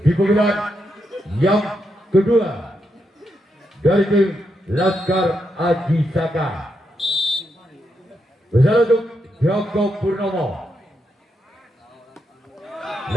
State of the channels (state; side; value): normal; both; correlation 0.82